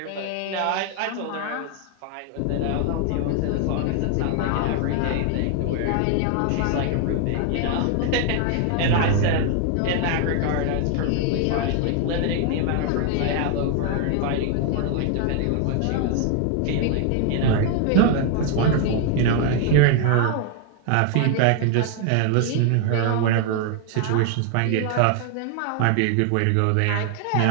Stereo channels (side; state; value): both; different; correlation 0.00